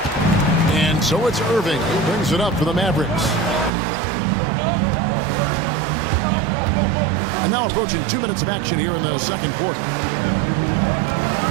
And so it's Irving who brings it up for the Mavericks. And now approaching 2 minutes of action here in the second quarter.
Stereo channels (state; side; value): drops out; left; at 3.7 s